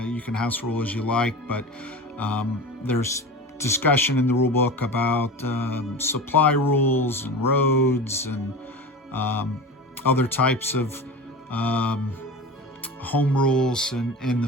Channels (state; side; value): normal; both; correlation 0.31